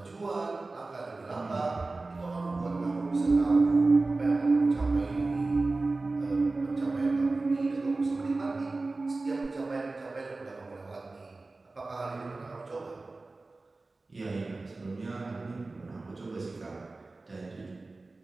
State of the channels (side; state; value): left; quieter; 3.4 dB